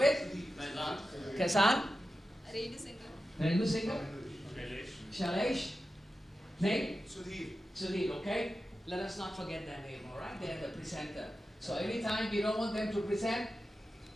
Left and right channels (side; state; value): both; normal; correlation 0.92